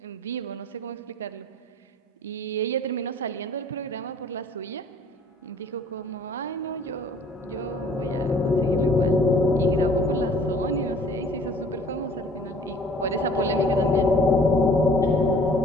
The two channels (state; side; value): normal; both; correlation 0.53